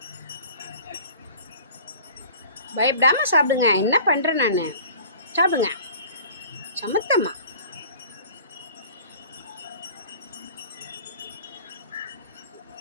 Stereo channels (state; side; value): inverted; both; correlation -0.45